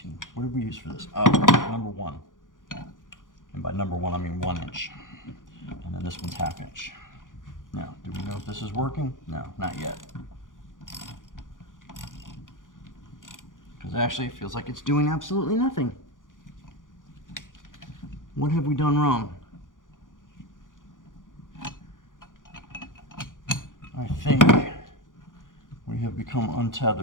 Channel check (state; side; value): late; right; 0.88 ms